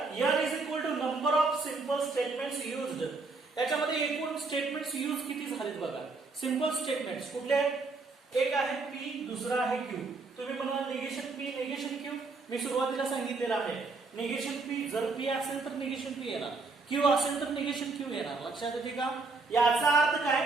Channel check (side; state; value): left; quieter; 3.9 dB